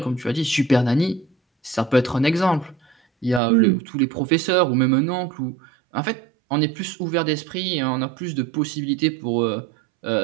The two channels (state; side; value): drops out; left; at 3.4 s